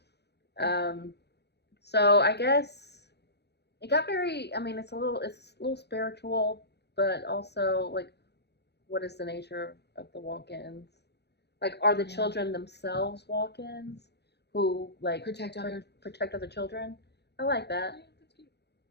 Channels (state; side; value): late; right; 0.49 ms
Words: So I guess it got very, I mean, it's a little spiritual, but also like, what is the nature of the walk-ins? Like, are the children themselves walk-ins who like Protect other children? I like that. Yeah, that's cute.